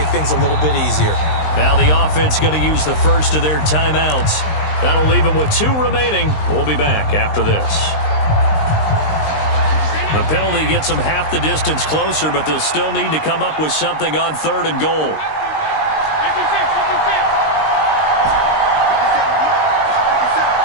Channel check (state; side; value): late; right; 19 ms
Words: things a little bit easier. Now the offense going to use the first of their timeouts. That'll leave them with 2 remaining. We'll be back after this. The penalty gets them half the distance closer, but they'll still need to come up with something on 3rd and goal.